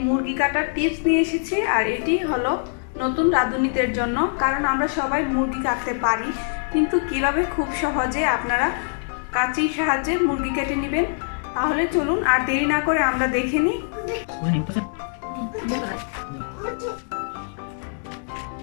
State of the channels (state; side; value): silent; right; digital silence